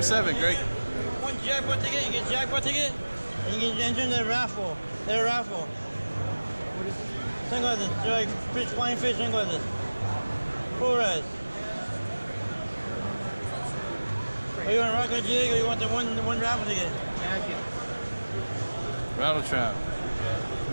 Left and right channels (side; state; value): both; inverted; correlation -1.00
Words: 7, Greg? One jackpot ticket, you get jackpot ticket, and you can enter in the raffle. They're a raffle. Sunglasses, they're like fish, flying fish sunglasses. Full res. Are you want to rock a jig or you want the one raffle ticket? Rattle trap.